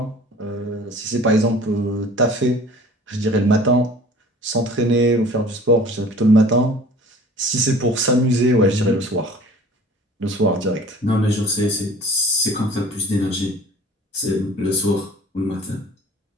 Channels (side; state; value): both; normal; correlation 0.46